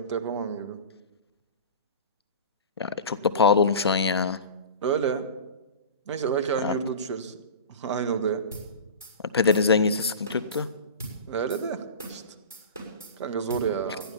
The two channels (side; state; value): both; inverted; correlation -0.33